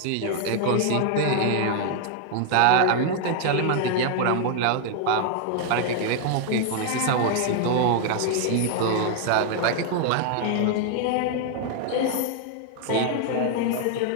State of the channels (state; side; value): different; both; correlation 0.00